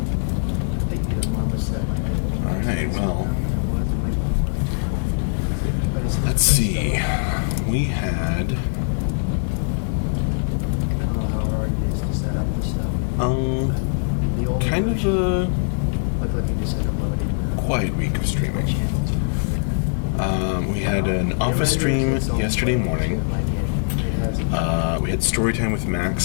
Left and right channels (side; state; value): right; silent; 64 dB below the other